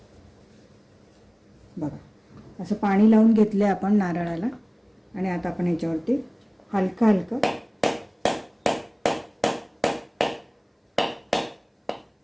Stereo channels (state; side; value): identical; both; correlation 1.00